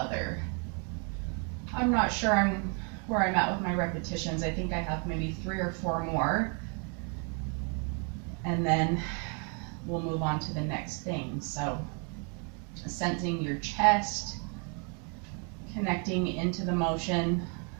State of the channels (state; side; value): quieter; left; 37.6 dB